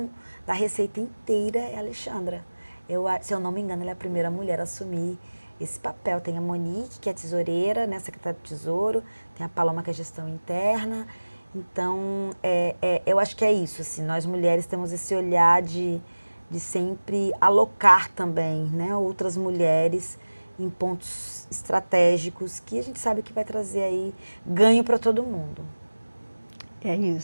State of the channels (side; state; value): both; inverted; correlation -1.00